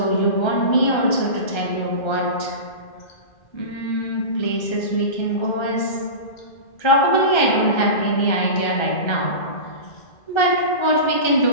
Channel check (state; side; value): late; right; 1.4 ms